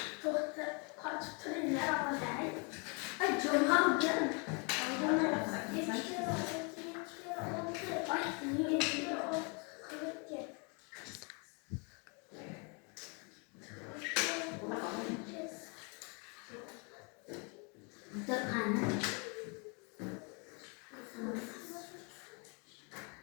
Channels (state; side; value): quieter; right; 34.2 dB